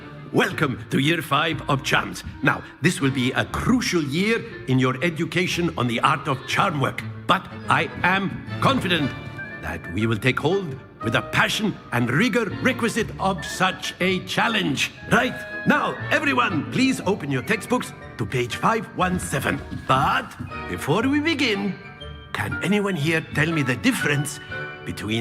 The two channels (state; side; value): identical; both; correlation 1.00